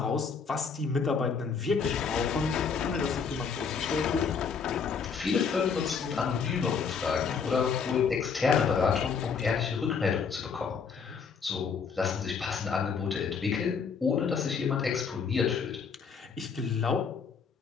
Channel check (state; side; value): quieter; right; 5.9 dB